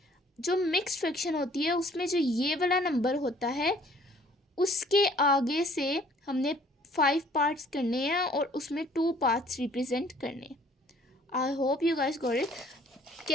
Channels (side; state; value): both; normal; correlation 0.57